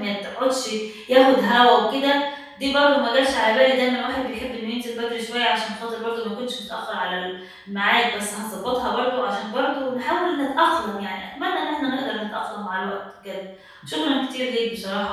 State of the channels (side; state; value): both; identical; correlation 1.00